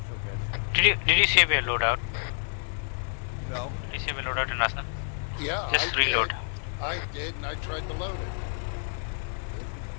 so good. Did you save your loadout? No. Did you save your loadout in Arsenal? Yeah, Just I reload. Did. I did, and I tried to load it.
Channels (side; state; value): right; silent; digital silence